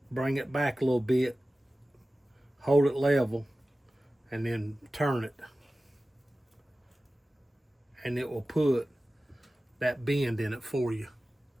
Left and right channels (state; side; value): normal; both; correlation 0.96